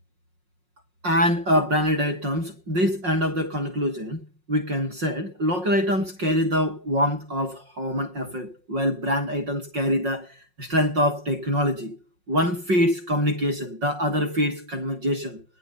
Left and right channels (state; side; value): late; left; 5.5 ms